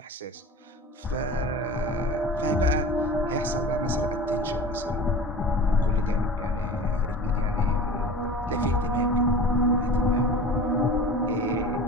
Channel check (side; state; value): both; normal; correlation 0.36